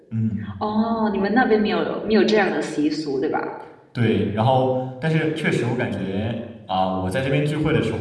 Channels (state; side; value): identical; both; correlation 1.00